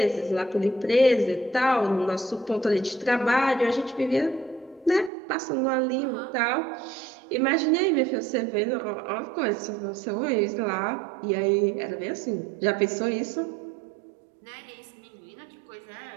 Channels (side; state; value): left; drops out; at 5.1 s